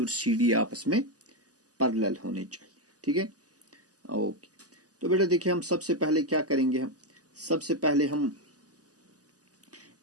CD आपस में पैरेलल होने चाहिए। ठीक है, ओके। तो बेटा देखिए, हम सबसे पहले क्या करेंगे, हम सबसे पहले हम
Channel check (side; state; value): left; late; 0.67 ms